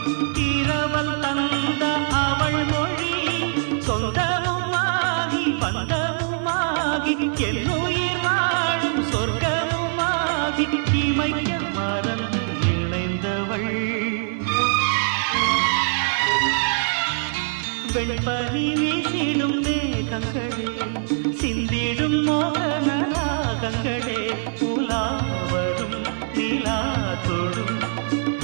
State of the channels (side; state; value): left; silent; 63 dB below the other